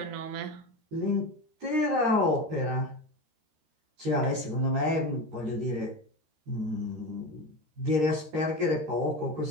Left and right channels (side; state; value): left; late; 13 ms